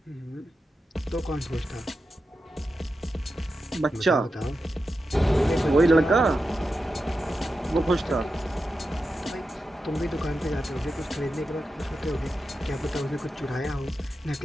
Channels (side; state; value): both; normal; correlation 0.90